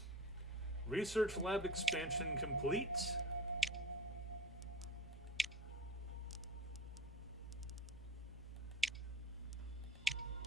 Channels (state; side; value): normal; both; correlation 0.36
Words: Research lab expansion complete.